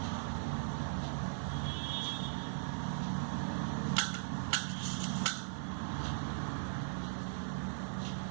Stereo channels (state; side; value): silent; left; 52 dB below the other